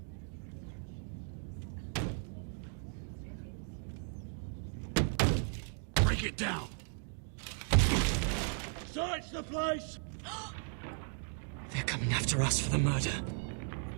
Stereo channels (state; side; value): silent; left; 54 dB below the other